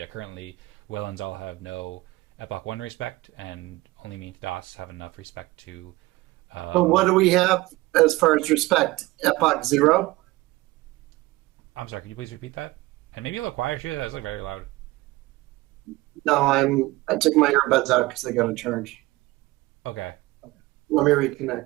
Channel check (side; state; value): left; quieter; 20.0 dB